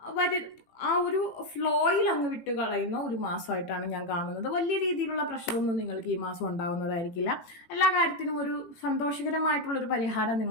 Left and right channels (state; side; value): late; right; 18 ms